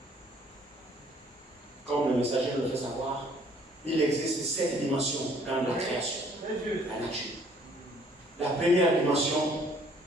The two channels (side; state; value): both; normal; correlation 0.60